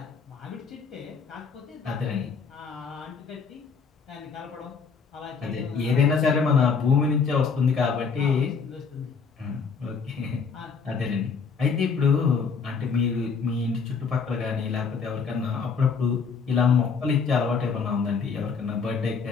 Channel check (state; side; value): quieter; right; 5.4 dB